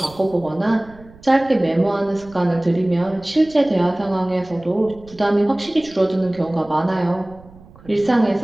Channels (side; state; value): right; noise; rumble, 23 dB below the sound